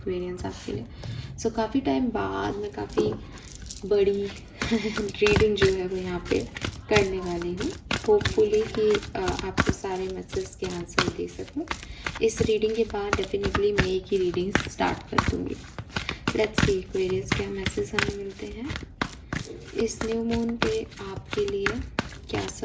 आपके लिए। सो काफ़ी टाइम बाद मैं काफ़ी बड़ी रीडिंग जो है वो यहाँ पे करने वाली हूँ। होपफुली कि आपको सारे मैसेज के आंसर दे सकूँ। इस रीडिंग के बाद डेफिनेटली मई की रीडिंग स्टार्ट कर दूँगी। लेट्स सी एक्वेरियस क्या मैसेज हमें मिलते हैं इस न्यू मून पे आपके लिए, क्या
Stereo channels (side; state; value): both; identical; correlation 1.00